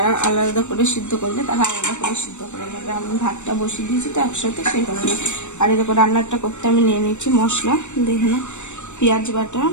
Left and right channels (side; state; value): right; late; 0.84 ms